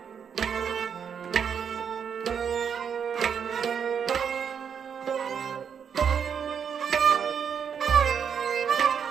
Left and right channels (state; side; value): quieter; left; 7.3 dB